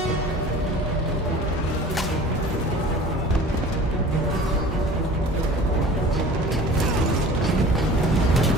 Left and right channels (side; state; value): both; normal; correlation 0.43